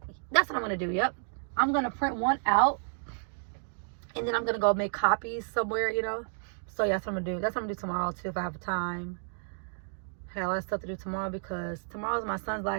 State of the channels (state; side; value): silent; left; 57 dB below the other